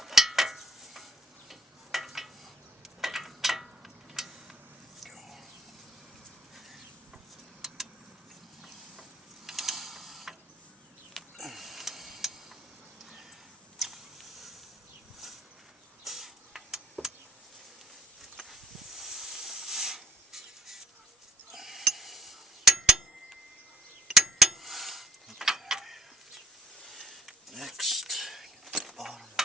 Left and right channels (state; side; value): normal; both; correlation 0.62